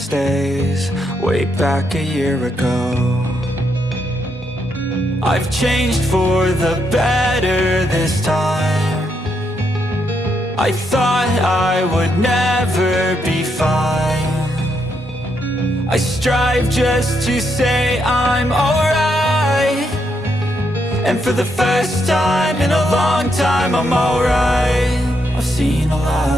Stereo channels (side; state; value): both; normal; correlation 0.79